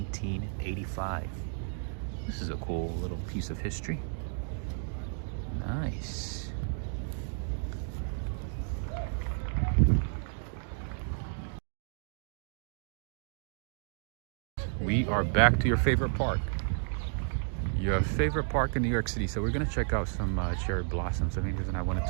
This is a cool little piece of history. Nice. We are back to your favorite park. Your favorite park in New York City. So we're gonna check out some cherry blossoms. The main reason I wanted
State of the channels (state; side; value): silent; left; 56 dB below the other